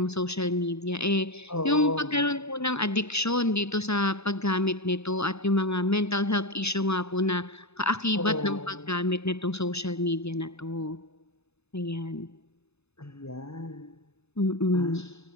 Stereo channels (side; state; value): right; late; 0.80 ms